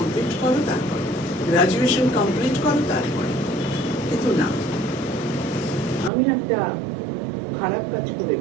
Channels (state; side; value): drops out; left; at 6.1 s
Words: করো, তারপর গ্রাজুয়েশন কমপ্লিট করো, তারপরে। কিন্তু না, আমি একটা খারাপ কাজ করে